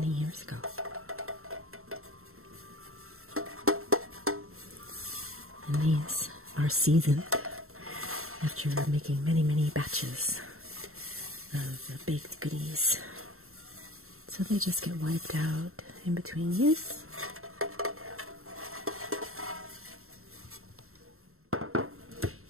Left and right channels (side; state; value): left; late; 0.62 ms